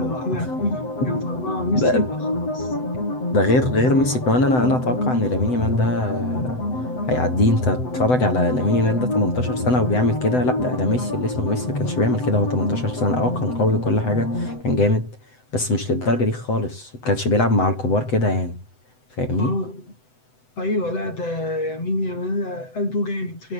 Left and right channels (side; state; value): right; late; 7.9 ms